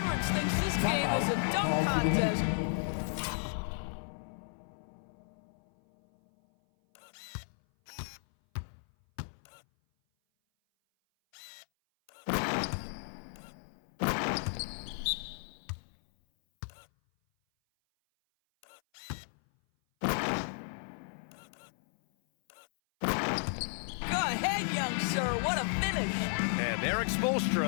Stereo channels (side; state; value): right; silent; 55 dB below the other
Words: thinks this game is a dunk contest. Young sir. What a finish. And Eric